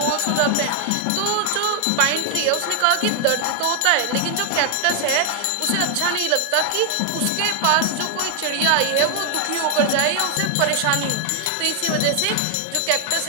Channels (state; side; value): different; both; correlation 0.01